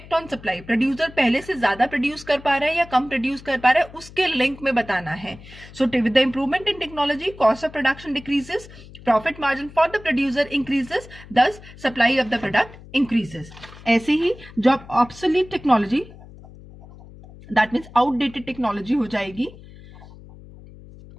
ऑन सप्लाई, प्रोड्यूसर पहले से ज्यादा प्रोड्यूस कर पा रहा है या कम प्रोड्यूस कर पा रहा है, उसके लिंक में बताना है. So with the improvement in technology cost of production decreases, profit margin for the producer increases, thus supply of the product increases. ऐसे ही जब obsolete technology, that means outdated technology हो जाएगी.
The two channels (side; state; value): left; noise; hum, 19 dB below the sound